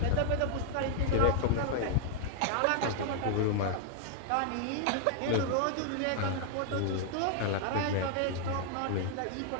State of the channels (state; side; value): different; both; correlation 0.00